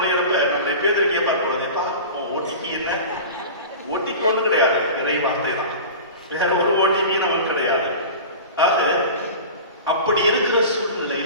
நம்ம பேருக்கு கேட்பார் போலப்பா, ஓடிபி என்ன? ஓடிபி ஒன்றும் கிடையாது, இறை வார்த்தை தான், வேற ஒரு ஓடிபி நமக்கு கிடையாது. ஆக அப்படி இருக்கிற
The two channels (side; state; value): both; inverted; correlation -0.33